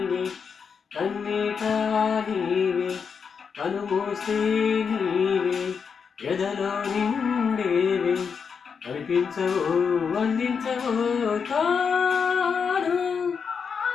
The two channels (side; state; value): right; quieter; 6.1 dB